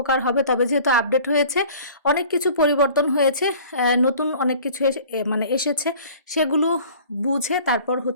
হবে। তবে যেহেতু আপডেট হয়েছে, অনেক কিছু পরিবর্তন হয়েছে, নতুন অনেক কিছু এসেছে, সেগুলো বুঝে তারপর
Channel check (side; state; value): both; inverted; correlation -0.47